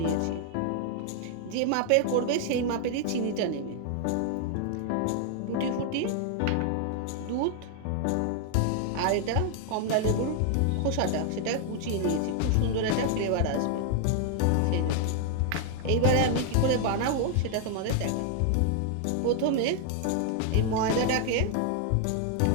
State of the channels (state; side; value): different; both; correlation 0.00